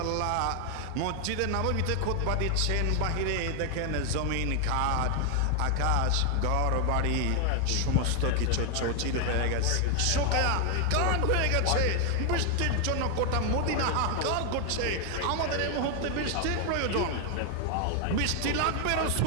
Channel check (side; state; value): both; different; correlation 0.00